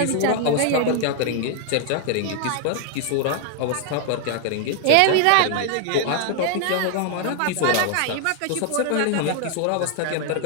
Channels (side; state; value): both; different; correlation 0.00